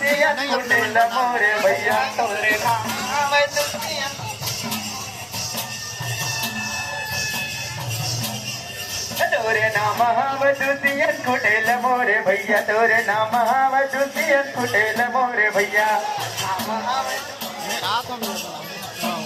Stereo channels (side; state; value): both; identical; correlation 1.00